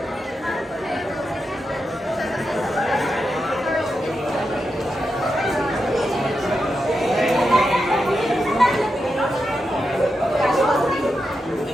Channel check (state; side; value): normal; both; correlation 0.87